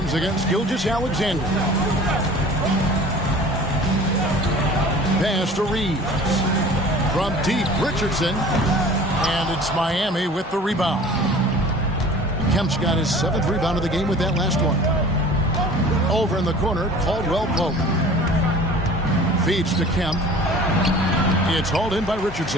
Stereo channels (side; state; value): both; normal; correlation 0.44